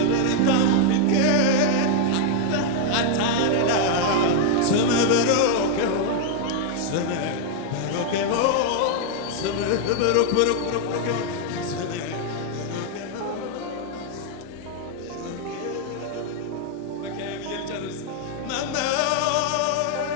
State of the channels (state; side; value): different; both; correlation 0.00